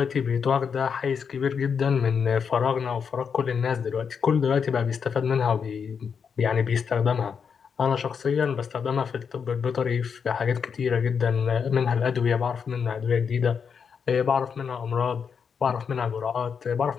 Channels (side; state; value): right; quieter; 6.5 dB